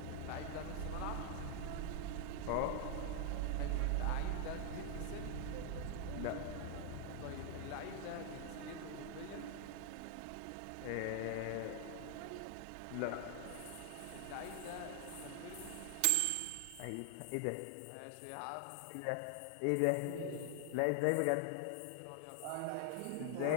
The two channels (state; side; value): different; both; correlation 0.00